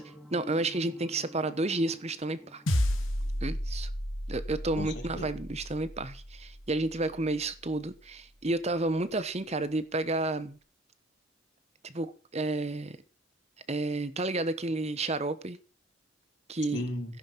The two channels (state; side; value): normal; both; correlation 0.58